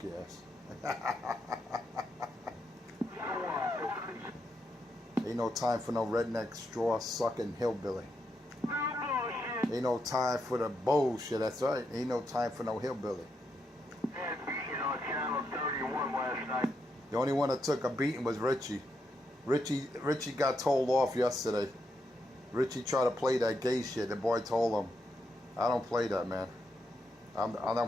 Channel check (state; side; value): normal; both; correlation 0.81